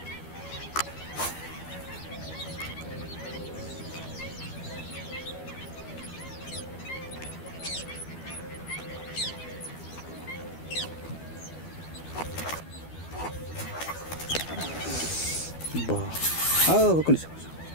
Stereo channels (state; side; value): late; right; 12 ms